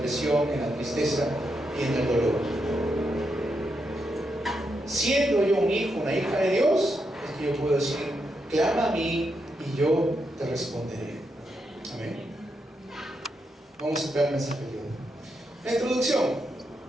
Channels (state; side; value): normal; both; correlation 0.83